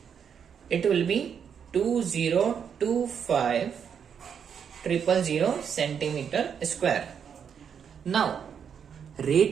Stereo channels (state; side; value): quieter; left; 7.5 dB